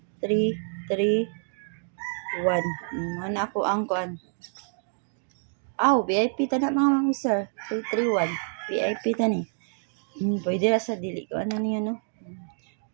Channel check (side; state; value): left; silent; digital silence